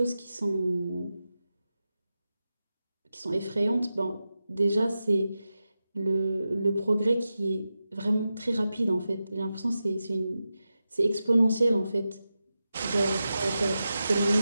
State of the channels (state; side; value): inverted; both; correlation -0.92